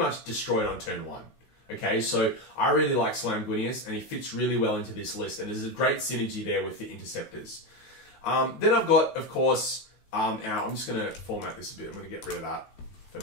destroyed on turn 1. Okay, so I really like Slamguinius, and he fits really well into this list, and there's a great synergy there with the Interceptors. Then I've got, of course, Now, I'm just going to format this a bit. I'm going to get rid of that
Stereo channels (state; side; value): late; right; 16 ms